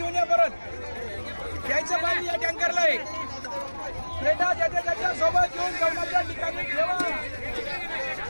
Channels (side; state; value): both; inverted; correlation -1.00